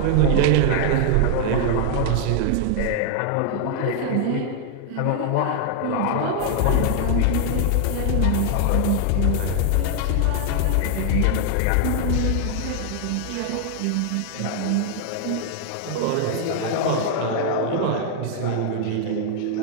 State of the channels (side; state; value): both; different; correlation 0.00